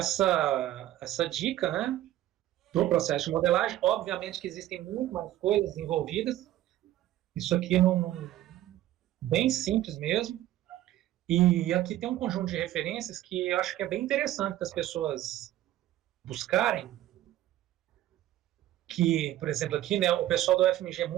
dica, né, do processo de modelagem. Obviamente que existem muito mais coisas envolvidas. Isso aqui não bem simples mesmo. E aqui tem um conjunto de referências que eu acho que é bem interessante das pessoas buscarem, que, por exemplo, aqui, né, o pessoal do FMG é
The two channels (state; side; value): quieter; left; 13.9 dB